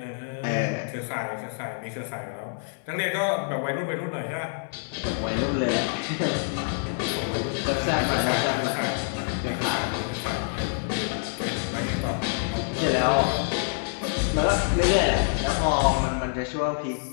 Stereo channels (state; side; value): silent; right; digital silence